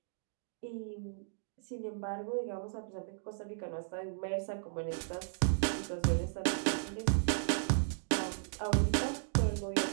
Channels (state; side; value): silent; left; digital silence